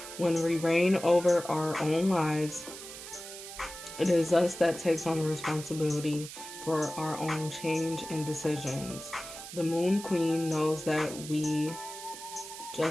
when we reign over our own lives, it is us that takes on the responsibility for our own change and decisions. The Moon Queen knows that we,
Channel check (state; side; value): noise; right; hiss, 12 dB below the sound